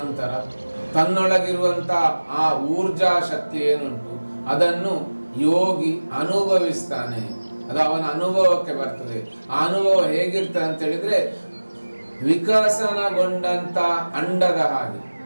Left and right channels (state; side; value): inverted; both; correlation -1.00